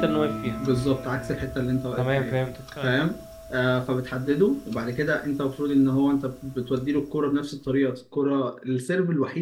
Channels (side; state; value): both; identical; correlation 1.00